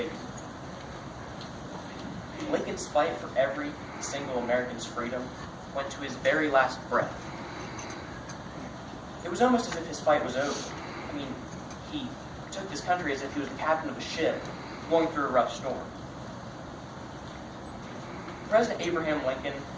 Lincoln's fight for every single American's freedom went to his very last breath. It was almost as if his fight was over. He took this country as if he was the captain of a ship going through a rough storm. President Abraham Lincoln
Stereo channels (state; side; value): identical; both; correlation 1.00